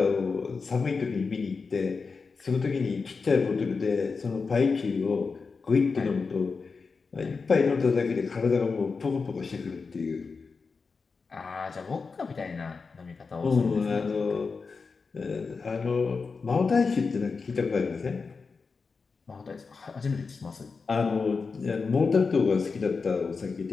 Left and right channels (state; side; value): quieter; right; 4.7 dB